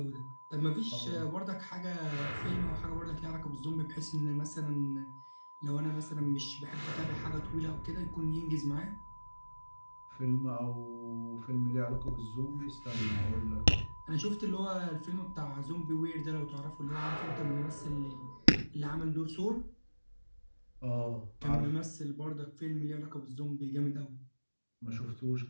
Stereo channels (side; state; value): both; inverted; correlation -1.00